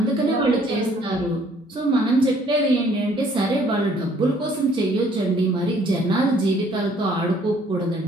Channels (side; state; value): both; normal; correlation 0.61